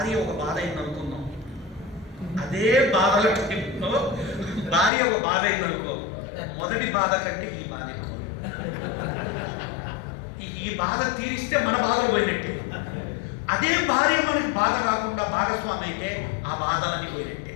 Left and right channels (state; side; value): drops out; right; at 4.9 s